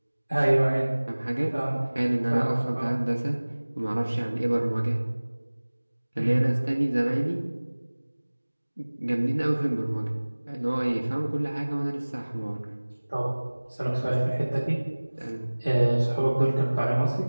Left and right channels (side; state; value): both; inverted; correlation -1.00